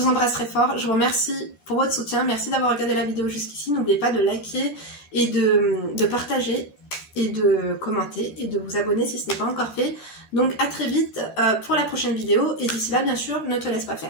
embrasse très fort. Je vous remercie pour votre soutien. Merci d'avoir regardé la vidéo jusqu'ici. N'oubliez pas de liker et de partager et de commenter et de vous abonner si ce n'est pas encore fait. Donc à très vite pour la prochaine vidéo. Et d'ici là, bien sûr, ne te laisse pas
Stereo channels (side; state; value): right; late; 12 ms